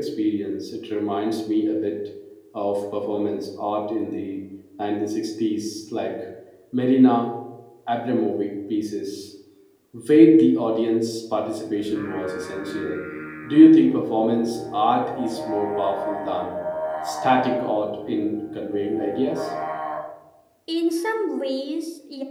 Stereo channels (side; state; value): both; identical; correlation 1.00